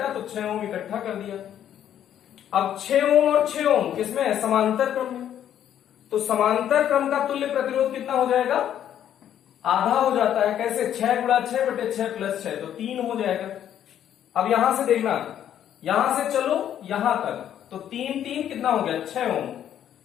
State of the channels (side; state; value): right; quieter; 10.3 dB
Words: तो 6 ओम इकट्ठा कर दिया। अब 6 ओम और 6 ओम किसमें है? समांतर क्रम में। तो समांतर क्रम का तुल्य प्रतिरोध कितना हो जाएगा? आधा हो जाता है। कैसे? 6 गुणा 6 बटे 6 प्लस 6, तो 3 हो जाएगा। अब यहां से देखना, यहां से चलो यहां तक, तो 3 कितना हो गया? 6 ओम।